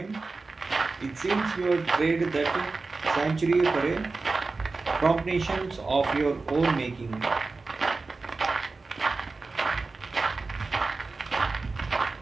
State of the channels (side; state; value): left; quieter; 3.8 dB